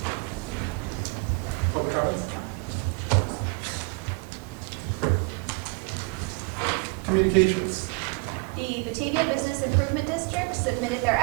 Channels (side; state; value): left; quieter; 29.5 dB